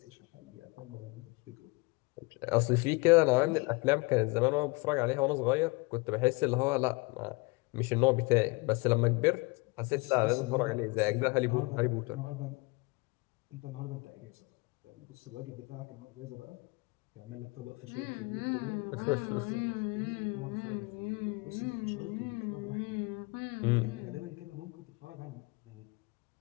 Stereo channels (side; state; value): right; quieter; 26.7 dB